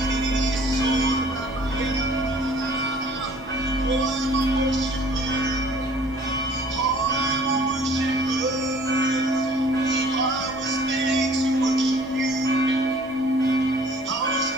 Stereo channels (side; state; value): both; normal; correlation 0.53